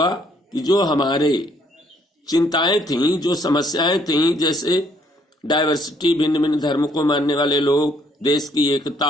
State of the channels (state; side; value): normal; both; correlation 0.66